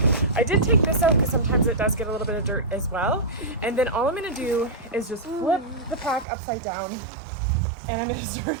I did take this out because sometimes it does get a little bit of dirt as well. And then all I'm gonna do is just flip the pack upside down, and I'm gonna start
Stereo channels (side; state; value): left; drops out; at 6.2 s